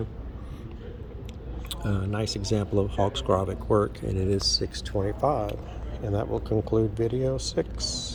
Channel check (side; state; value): both; identical; correlation 1.00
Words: Nice example of Hawks Grovic work, and it is $6.25. And that will conclude video